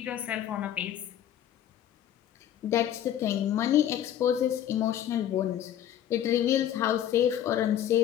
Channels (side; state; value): right; quieter; 10.7 dB